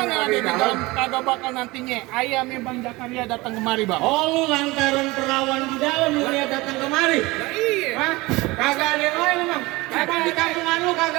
yang yang ada di di dalam. dalam kagak bakal nantinya ayam yang Bang Jakaria datang kemari bang. Oh lu lantaran perawan di dalam lu dia datang kemari. Nah, iya. Hah? Kagak ada yang lain emang. Emang di kampungan lu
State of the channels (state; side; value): quieter; left; 21.9 dB